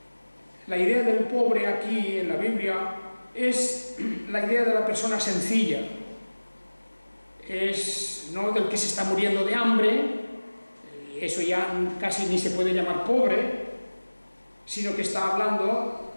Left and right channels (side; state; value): both; inverted; correlation -1.00